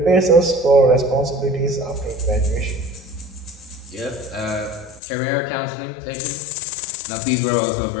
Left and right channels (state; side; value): drops out; right; at 5.0 s